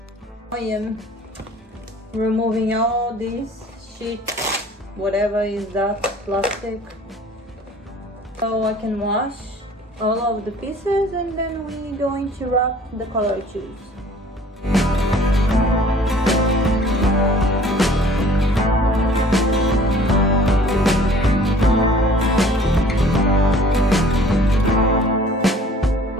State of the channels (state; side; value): normal; both; correlation 0.51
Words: I am removing all this shit, whatever is that plastic, so I can wash all of the pieces and then we're going to wrap the color I choose.